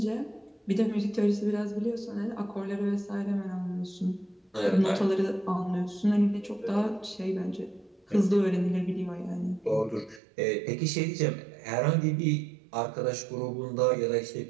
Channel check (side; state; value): left; drops out; at 10.2 s